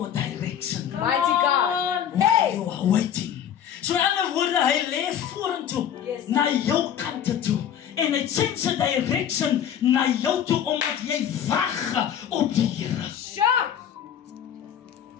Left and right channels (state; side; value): quieter; right; 9.2 dB